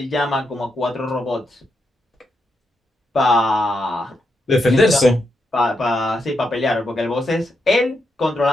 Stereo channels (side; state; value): both; normal; correlation 0.82